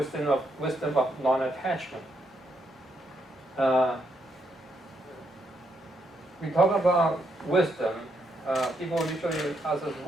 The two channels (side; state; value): both; normal; correlation 0.77